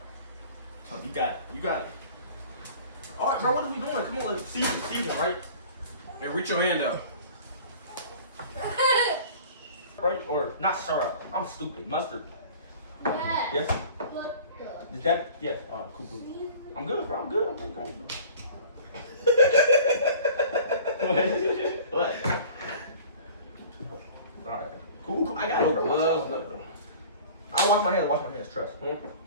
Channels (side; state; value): both; inverted; correlation -0.45